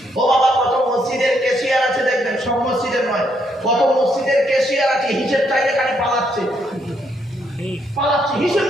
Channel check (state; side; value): normal; both; correlation 0.74